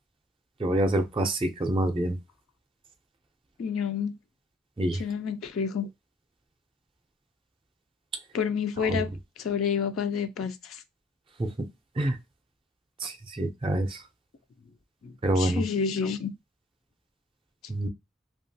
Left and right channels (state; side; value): normal; both; correlation 0.58